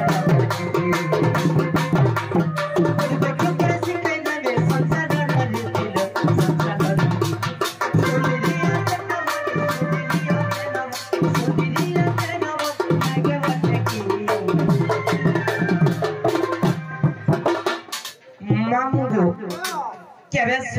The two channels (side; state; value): both; identical; correlation 1.00